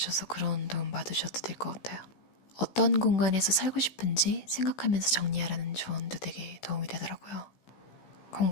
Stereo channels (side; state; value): right; late; 16 ms